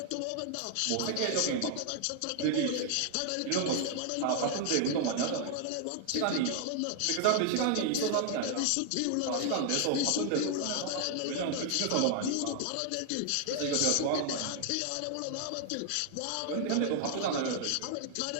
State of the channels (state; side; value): different; both; correlation 0.00